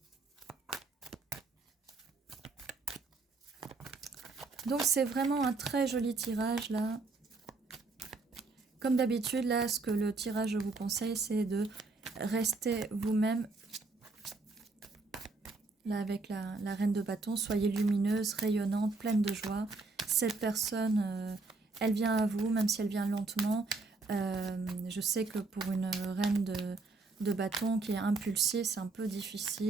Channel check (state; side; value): quieter; left; 3.7 dB